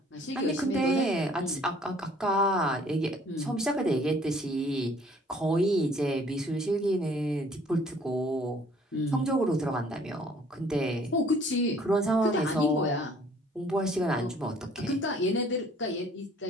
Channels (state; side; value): normal; both; correlation 0.57